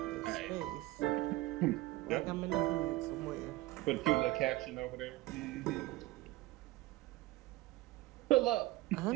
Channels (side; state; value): left; quieter; 18.4 dB